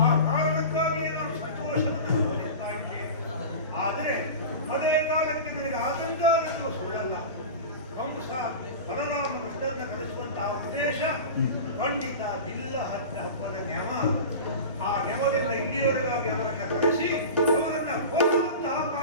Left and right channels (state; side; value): inverted; both; correlation -0.31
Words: ಆ ಕಾರಣಕ್ಕಾಗಿಯೇ ನಾನು ಸಂತೋಷವನ್ನು ಅನುಭವಿಸ್ತಾ ಇದ್ದೇನೆ. ಆದರೆ ಅದೇ ಕಾಲಕ್ಕೆ ನನಗೆ ಆತಂಕ ಅನ್ನೋದು ಸುಳ್ಳಲ್ಲ. ಕಂಸ ಬಲರಾಮ ಕೃಷ್ಣನ ಕರೆಸುವಂತಹ ಉದ್ದೇಶ ಖಂಡಿತ ಬಿಲ್ಲ ಹಬ್ಬದ ನ್ಯಮ. ಆ ನ್ಯಮದಿಂದ ಇಲ್ಲಿಯವರೆಗಾಗಿ ಅವರನ್ನು ಕರೆಸಿ ಅವರನ್ನ ಹೋಗುವಂತಹ